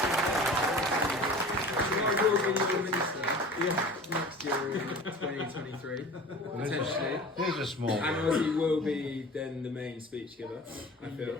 I will be your minister next year in 2023, potentially. There's a small And one. Ozzy will be then the main speech giver, I feel.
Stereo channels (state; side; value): normal; both; correlation 0.39